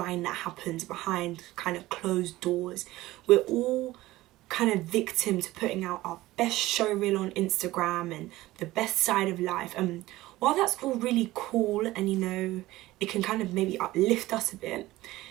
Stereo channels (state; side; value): quieter; left; 17.5 dB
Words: that happens behind kind of closed doors. We're all kind of victim to putting out our best show reel on Instagram and the best side of life. And while that's all really cool and it can kind of maybe uplift us a bit,